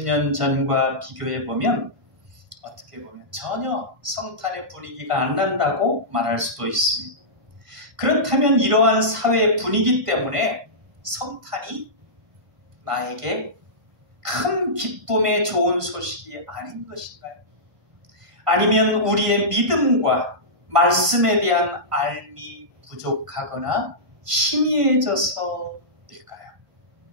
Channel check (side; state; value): left; late; 1.5 ms